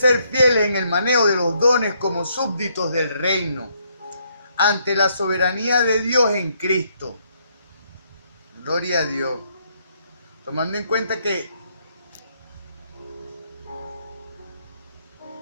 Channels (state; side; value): inverted; both; correlation -0.72